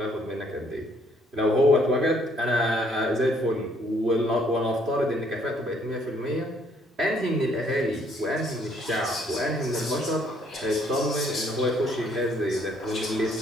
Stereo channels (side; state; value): both; normal; correlation 0.66